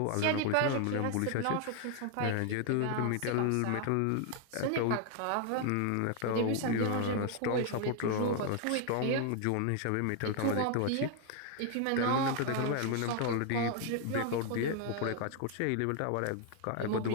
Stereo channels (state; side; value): different; both; correlation 0.00